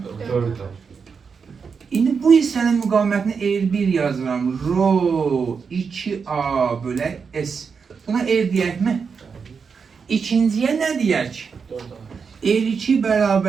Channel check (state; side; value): quieter; left; 5.8 dB